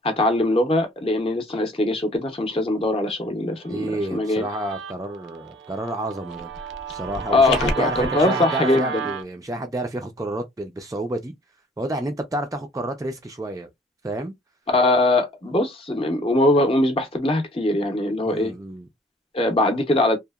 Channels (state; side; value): normal; both; correlation 0.55